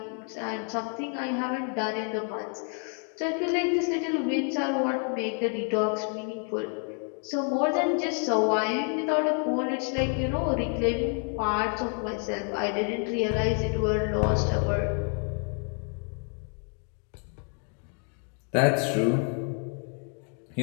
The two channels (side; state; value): right; quieter; 39.8 dB